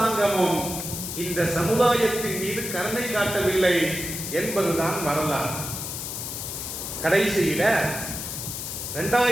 இந்த சமுதாயத்தின் மீது கருணை காட்டவில்லை என்பதுதான் வரலாறு. கடைசியில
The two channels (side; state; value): left; noise; hiss, 6 dB below the sound